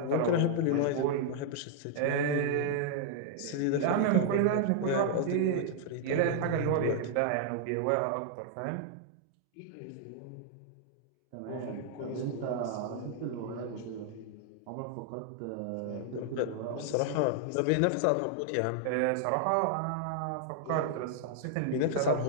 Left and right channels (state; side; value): different; both; correlation 0.00